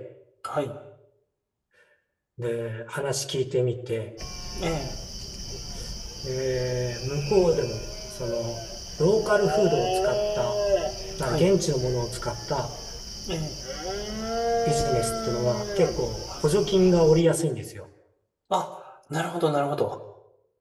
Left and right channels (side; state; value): both; identical; correlation 1.00